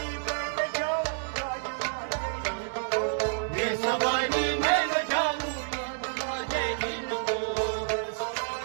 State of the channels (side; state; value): left; silent; digital silence